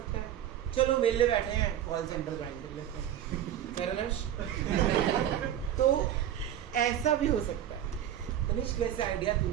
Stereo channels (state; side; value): quieter; left; 10.8 dB